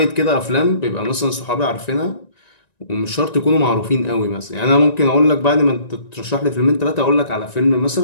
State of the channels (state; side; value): late; right; 1.9 ms